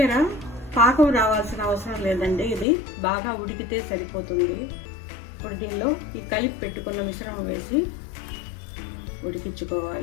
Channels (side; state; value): right; drops out; at 2.7 s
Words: పాకం రావాల్సిన అవసరం లేదండి, ఇది బాగా ఉడికితే సరిపోతుంది. ఇప్పుడు దీనిలో ఈ కలిపి పెట్టుకున్న మిశ్రమం వేసి